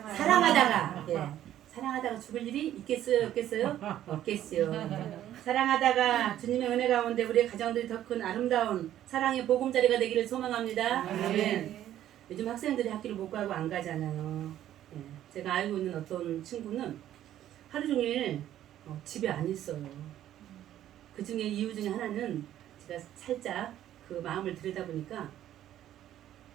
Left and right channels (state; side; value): quieter; left; 12.0 dB